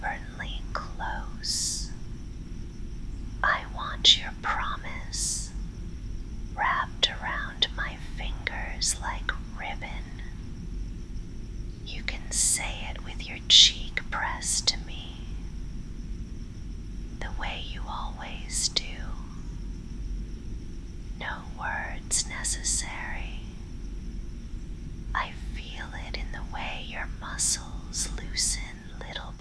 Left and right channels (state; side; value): identical; both; correlation 1.00